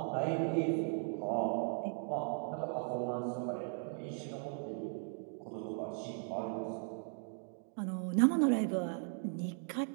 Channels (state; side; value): silent; left; 53 dB below the other